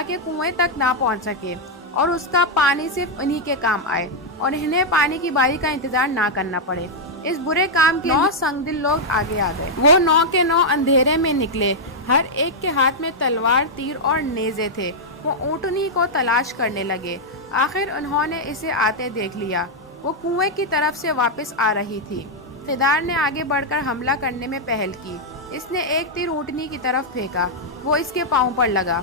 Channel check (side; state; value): both; normal; correlation -0.04